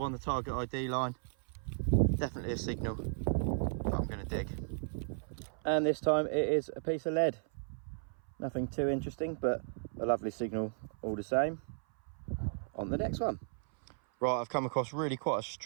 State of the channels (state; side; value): silent; left; 54 dB below the other